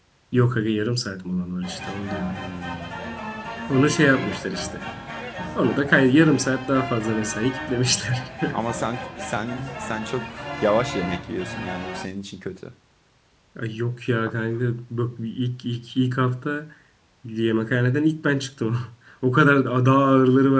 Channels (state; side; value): identical; both; correlation 1.00